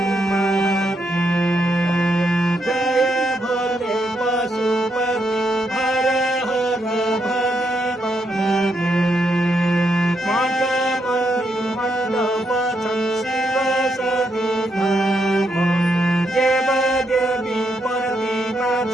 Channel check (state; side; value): normal; both; correlation 0.79